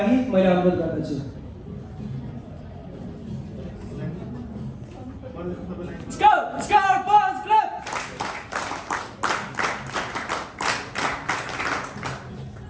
मैले अनुरोध गर्दछु। Scout Boys Club!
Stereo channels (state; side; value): identical; both; correlation 1.00